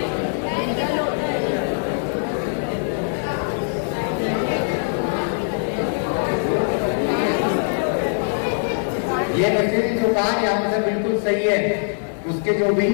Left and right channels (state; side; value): silent; right; digital silence